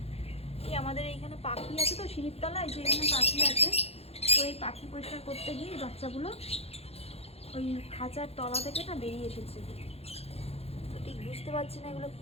এই আমাদের এইখানে পাখি আছে তো, সিঁড়ির তলায় যে এখানে পাখি আছে, তো এই পাখি পরিষ্কার করতে গিয়ে বাচ্চাগুলো ওই খাঁচার তলা থেকে না বেরিয়ে এসেছে। তো ঠিক বুঝতে পারছি না এগুলো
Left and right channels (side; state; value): right; late; 0.29 ms